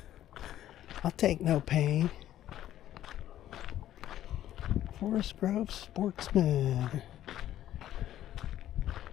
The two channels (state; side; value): quieter; right; 12.4 dB